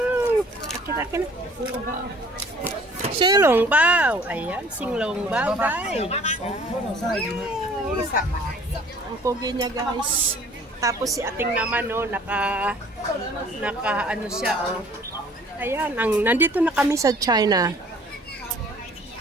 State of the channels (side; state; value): both; normal; correlation 0.53